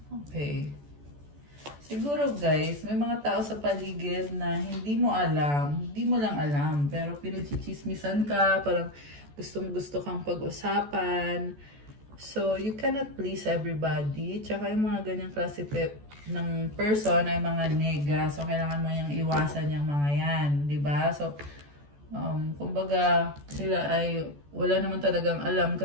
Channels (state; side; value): late; left; 14 ms